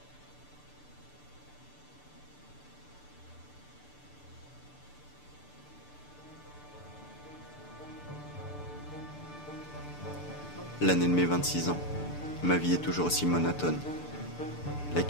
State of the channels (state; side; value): late; right; 6.7 ms